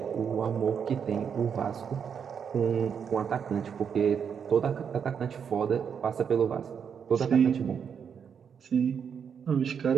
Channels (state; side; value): quieter; left; 7.2 dB